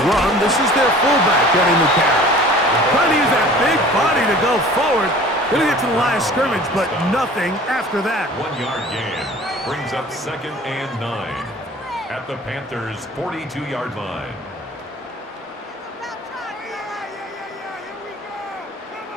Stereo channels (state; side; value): normal; both; correlation 0.46